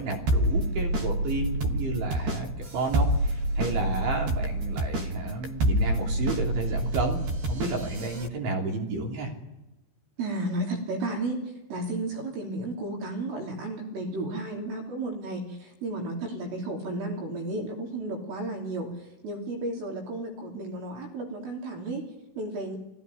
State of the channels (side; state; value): left; late; 13 ms